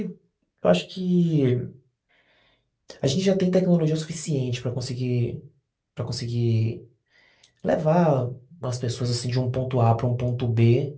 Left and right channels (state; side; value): identical; both; correlation 1.00